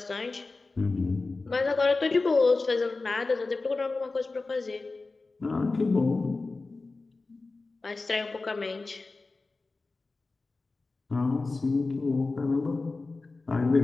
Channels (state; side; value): quieter; right; 3.6 dB